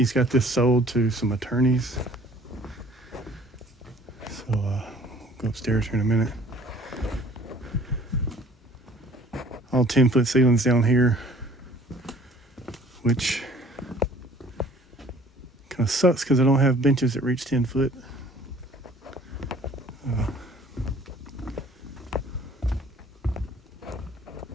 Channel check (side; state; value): both; normal; correlation 0.53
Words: got this sold to some attorneys. So we'll go upstairs here in a minute. All 10-foot ceilings down here, which kind of sucks because I don't have benches that reach 10 foot.